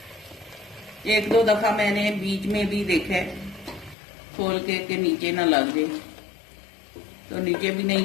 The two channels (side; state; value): right; drops out; at 4.0 s